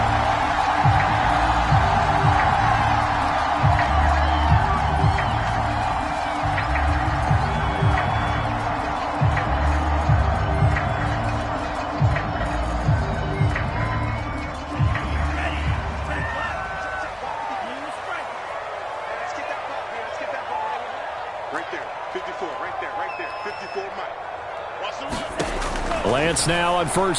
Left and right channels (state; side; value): identical; both; correlation 1.00